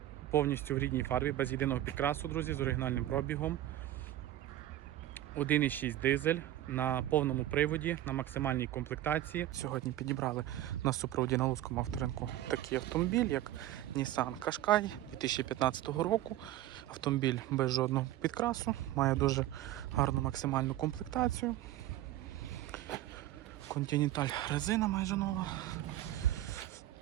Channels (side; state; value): left; quieter; 13.9 dB